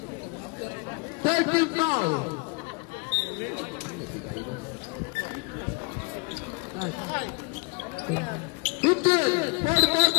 Thirteen foul. Fifteen.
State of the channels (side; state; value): right; quieter; 31.8 dB